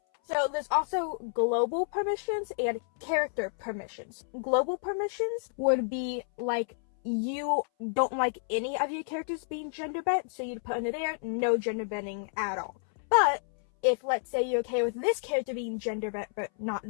So there's also global permissions and character permissions. Global permissions would be you don't like any of your characters being gender bent, so you'd put under there no gender bending at all. But if, let's say, you're okay with this character being gender bent but not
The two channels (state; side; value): silent; right; 58 dB below the other